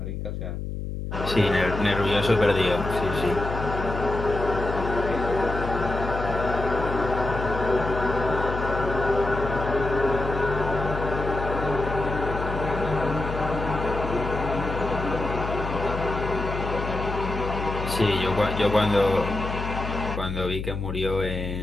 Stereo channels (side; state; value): left; noise; hum, 5 dB below the sound